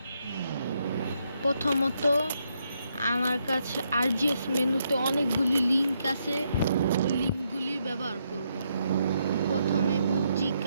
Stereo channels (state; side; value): inverted; both; correlation -0.78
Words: প্রথমত আমার কাছে আরজিএস মেনুতে অনেকগুলি লিঙ্ক আছে, ওই লিঙ্কগুলি ব্যবহার করব। প্রথমে বুজ্জি